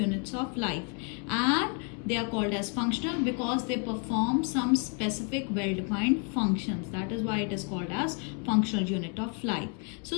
of life, and they are called as functional because they perform some specific well-defined functions. That is why it is called as functional unit of life. So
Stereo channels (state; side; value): quieter; right; 34.9 dB